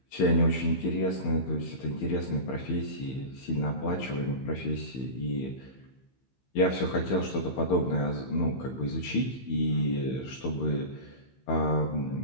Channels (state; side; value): late; right; 15 ms